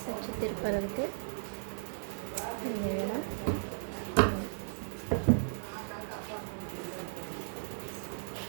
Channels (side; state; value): left; silent; digital silence